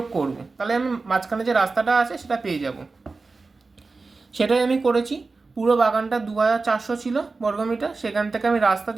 করব, তাহলে আমি মাঝখানে যে রাস্তাটা আছে সেটা পেয়ে যাব। সেটাই আমি করেছি। পুরো বাগানটা 2400 ছিল বর্গমিটার, সেখান থেকে আমি রাস্তা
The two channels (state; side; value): quieter; left; 3.9 dB